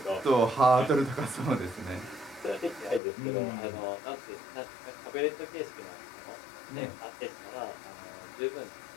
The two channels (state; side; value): drops out; right; at 3.0 s